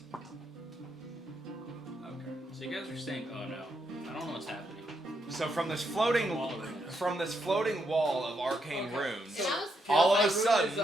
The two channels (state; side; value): normal; both; correlation 0.80